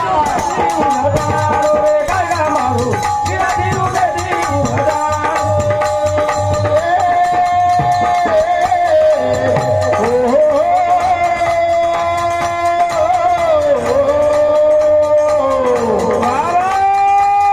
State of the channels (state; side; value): noise; right; rumble, 24 dB below the sound